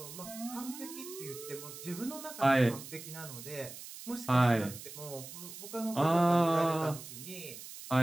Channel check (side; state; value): right; noise; hiss, 13 dB below the sound